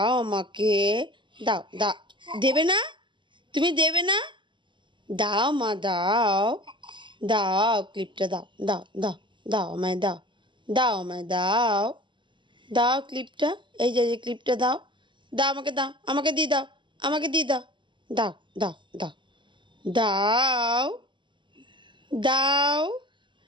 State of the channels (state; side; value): late; left; 0.23 ms